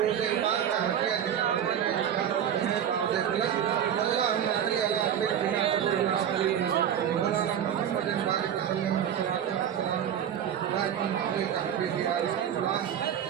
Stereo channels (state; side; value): quieter; left; 9.3 dB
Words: पाक का हदिया देने बावजूद प्लस अल्लाहुम्मा सल्ली अला सय्यिदिना मौलाना मुहम्मद बारिक वसल्लम